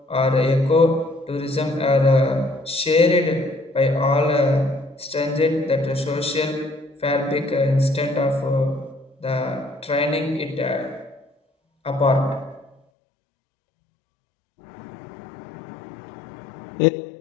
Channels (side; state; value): right; drops out; at 12.8 s